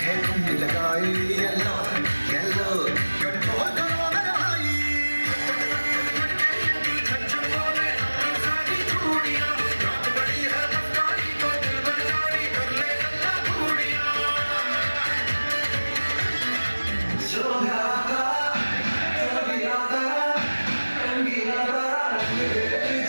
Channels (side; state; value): both; inverted; correlation -1.00